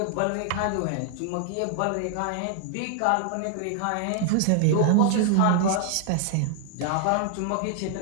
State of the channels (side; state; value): both; different; correlation 0.00